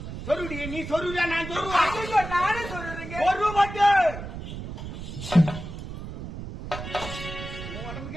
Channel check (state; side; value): noise; right; rumble, 9 dB below the sound